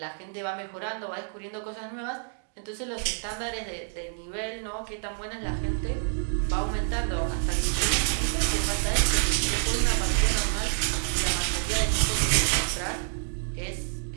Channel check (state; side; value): silent; left; 59 dB below the other